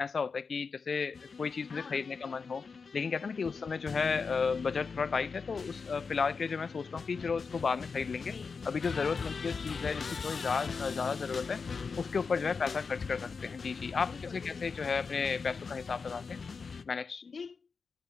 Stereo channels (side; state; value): right; quieter; 5.1 dB